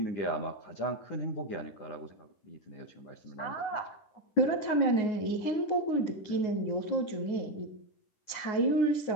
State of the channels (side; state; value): right; late; 9.5 ms